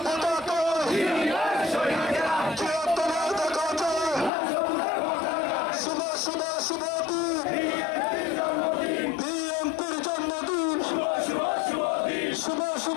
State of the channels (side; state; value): right; drops out; at 4.3 s